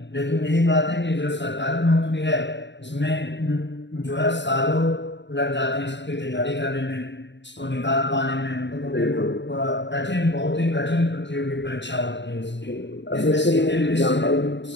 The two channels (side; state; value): right; late; 0.52 ms